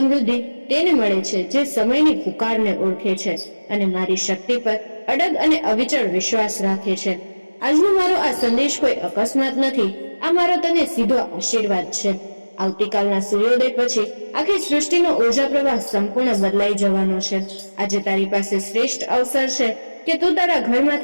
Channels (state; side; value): inverted; both; correlation -1.00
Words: તેને મળે છે જે સમયની પુકારને ઓળખે છે અને મારી શક્તિ પર અડગ અને અવિચળ વિશ્વાસ રાખે છે. આજનો મારો આ સંદેશ કોઈ અકસ્માત નથી. આ મારો તને સીધો આશીર્વાદ છે. આવતીકાલના સૂર્યોદય પછી આખી સૃષ્ટિનો ઉર્જા પ્રવાહ સંપૂર્ણ બદલાઈ જવાનો છે. આજે તારી પાસે શ્રેષ્ઠ અવસર છે કે તું તારા